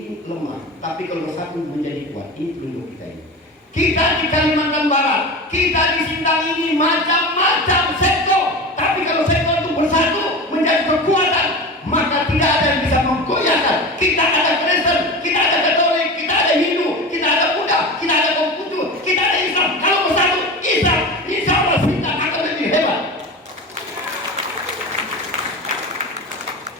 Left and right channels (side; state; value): both; normal; correlation 0.28